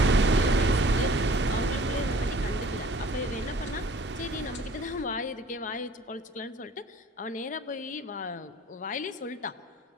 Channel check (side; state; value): both; normal; correlation 0.51